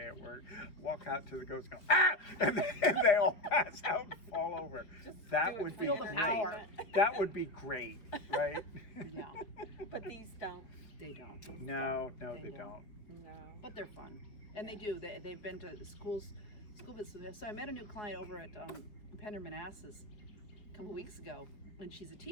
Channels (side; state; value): right; late; 4.9 ms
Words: at work. Walk out to the ghost, go, ah! And they all pass out and fall over. Just That do it would for be Feel the great. power. That would be great, right? Yeah. But these don't. They don't. No, They they don't. don't. No. But they're fun, and they do. They've been to school visits. So I met a new client over at Pender Manassas a couple weeks ago, and she's a